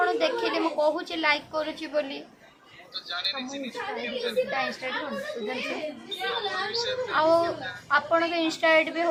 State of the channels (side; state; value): both; identical; correlation 1.00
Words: देखिली मु कहूची लाइक करूची बोली आपण के इंस्टा आईडी भी